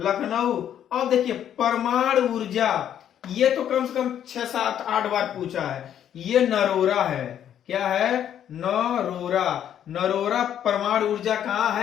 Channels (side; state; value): right; quieter; 10.0 dB